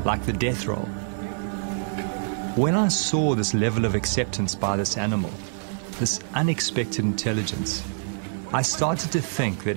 like the death roll. When I saw this level of acceptance by this animal, this unexpected intelligence, I started to think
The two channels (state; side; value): silent; left; 61 dB below the other